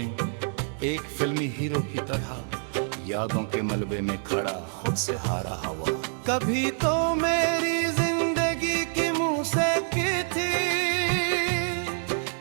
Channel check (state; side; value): silent; left; 60 dB below the other